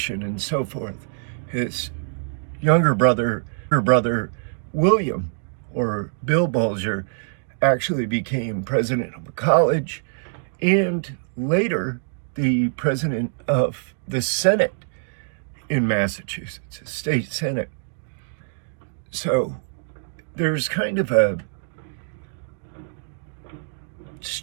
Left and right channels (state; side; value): silent; left; digital silence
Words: and so forth. His younger brother, William, or Bill Bulger, actually became president of a college and later the president of the Senate in Massachusetts, a state Senate. So there's kind of a